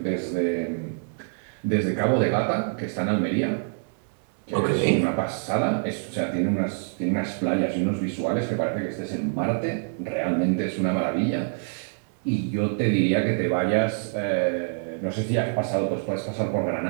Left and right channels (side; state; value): left; silent; 61 dB below the other